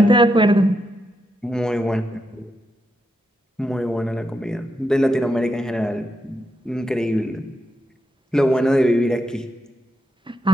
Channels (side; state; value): both; normal; correlation 0.83